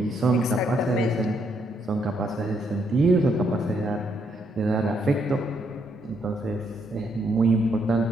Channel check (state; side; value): normal; both; correlation 0.74